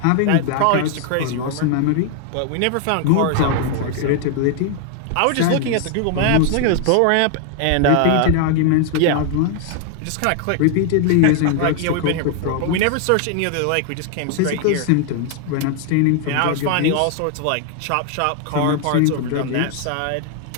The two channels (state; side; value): different; both; correlation 0.00